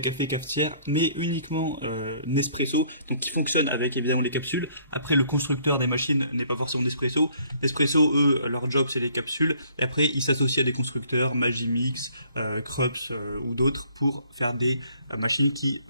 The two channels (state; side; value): inverted; both; correlation -0.62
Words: cafetières, mais uniquement Nespresso, donc qui fonctionnent avec évidemment les capsules. Après, le constructeur des machines n'est pas forcément Nespresso. Nespresso, eux, leur job c'est les capsules. Et après, ils s'associent à des constructeurs, Magimix, Krups ou d'autres, pour faire des machines qui